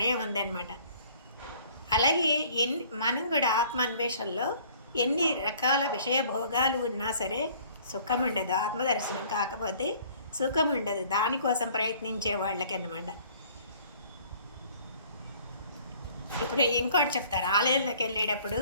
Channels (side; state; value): both; inverted; correlation -0.55